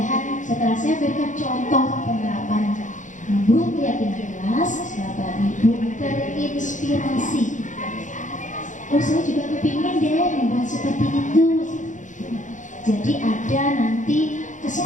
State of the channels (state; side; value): late; right; 0.36 ms